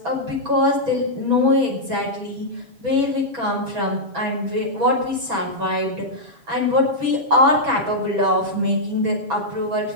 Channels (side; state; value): left; late; 7.2 ms